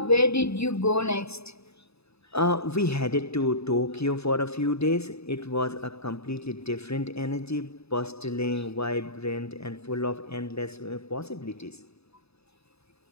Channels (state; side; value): late; right; 0.79 ms